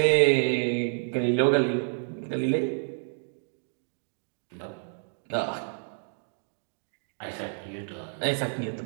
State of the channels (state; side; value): silent; left; digital silence